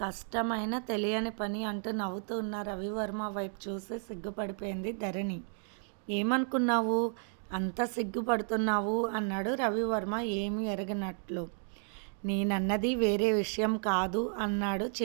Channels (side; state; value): left; silent; 56 dB below the other